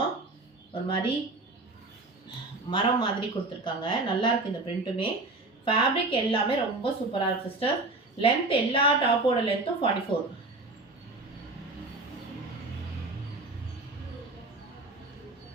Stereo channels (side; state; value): left; quieter; 3.1 dB